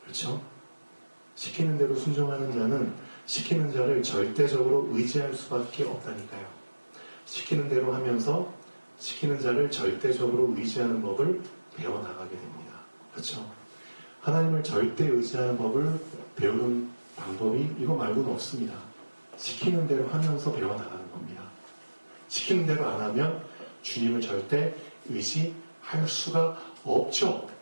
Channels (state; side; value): inverted; both; correlation -1.00